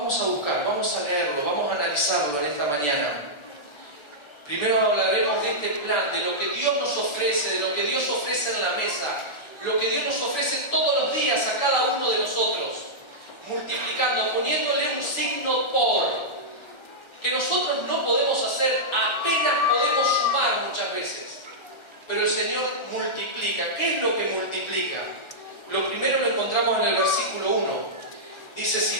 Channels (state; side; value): late; right; 1.4 ms